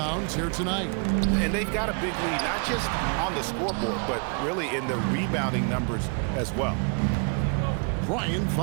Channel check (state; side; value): quieter; left; 39.2 dB